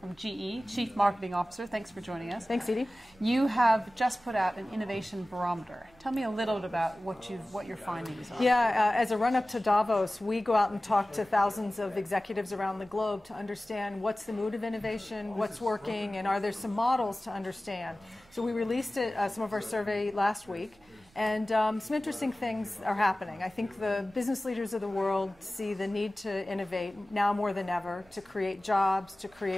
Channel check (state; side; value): noise; right; rumble, 30 dB below the sound